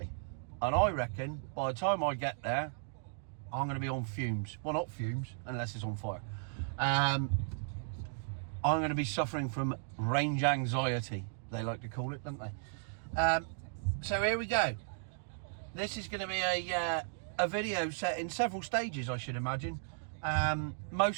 And I reckon by the time I get there, I'm going to be on fumes. Well, not fumes, unless it's on fire. I'm going to be suffering from range anxiety, they like to call it, don't they? So here we go. This is going to be a video set in several stages, I should imagine.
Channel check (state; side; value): silent; left; digital silence